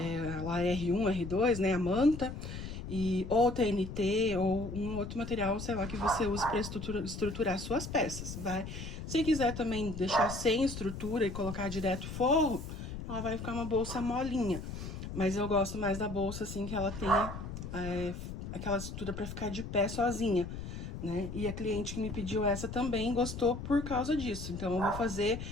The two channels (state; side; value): noise; left; rumble, 8 dB below the sound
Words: R1, R2, né, a manta, ou TNT, ou um outro material, sei lá, que você use para estruturar suas peças, vai. Se quiser também deixar sem estrutura e colocar direto forro, ela vai ficar uma bolsa molinha. Mas eu gosto mais da bolsa, assim, que ela tenha aquela estrutura para ficar de pé sozinha, né? E a cliente que me pediu essa também gostou por causa disso. Então, eu vou fazer